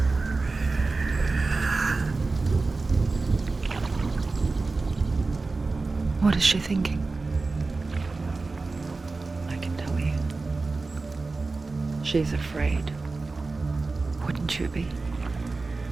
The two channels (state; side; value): quieter; left; 3.7 dB